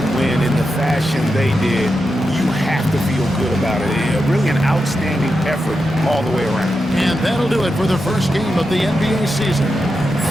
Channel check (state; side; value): normal; both; correlation 0.88